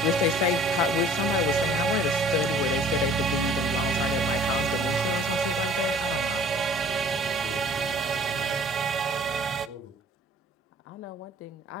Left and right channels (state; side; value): normal; both; correlation 0.52